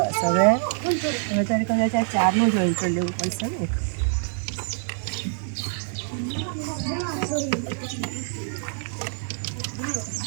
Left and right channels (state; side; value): silent; left; 60 dB below the other